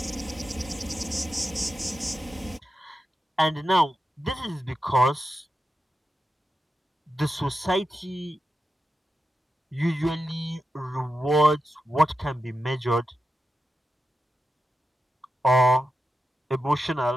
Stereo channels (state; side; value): normal; both; correlation 0.90